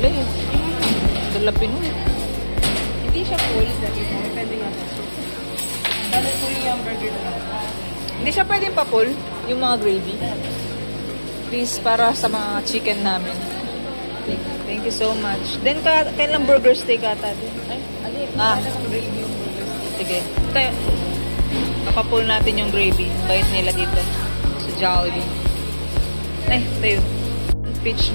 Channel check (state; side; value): inverted; both; correlation -1.00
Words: eh. Dalapin mo. Hindi siya full. May pending ako. Balik po yung burger na lang. Hindi siya pwedeng pa-pull, yung mga gravy. Please, para sa mga chicken namin. Thank you so much. Then, kailang burger steak ata din? Ay, alin. Ah. Gravy yung burger. Sige. Kaya, papapull natin yung gravy. Bait nila dito. Sa Jollibee. Ay, tayo. Peach